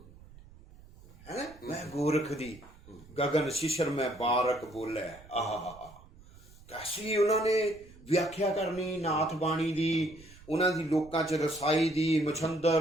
ਹੈ। ਮੈਂ ਗੋਰਖ ਦੀ ਗਗਨ ਸ਼ਿਸ਼ਰ ਮੈਂ ਬਾਰਕ ਬੋਲੇ। ਆਹ ਕੈਸੀ ਉਹਨਾਂ ਨੇ ਵਿਆਖਿਆ ਕਰਨੀ ਨਾਥ ਬਾਣੀ ਦੀ, ਉਹਨਾਂ ਦੀ ਲੋਕਾਂ 'ਚ ਰਸਾਈ ਦੀ,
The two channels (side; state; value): right; noise; rumble, 22 dB below the sound